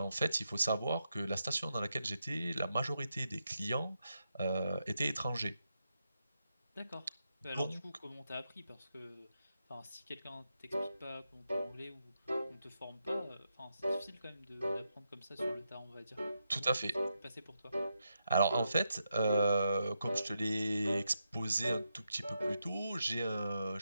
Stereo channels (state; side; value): inverted; both; correlation -0.85